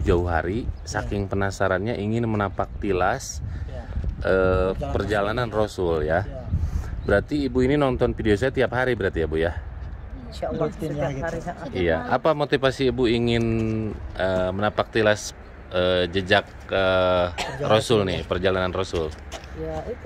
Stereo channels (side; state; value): both; identical; correlation 1.00